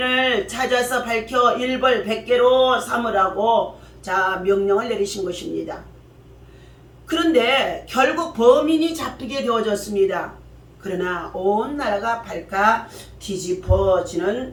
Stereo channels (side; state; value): both; identical; correlation 1.00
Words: 찾아서 밝혀 일벌 100개로 삼으라고 명령을 내리신 것입니다. 그런데 결국 범인이 잡히게 되어졌습니다. 그러나 온 나라가 발칵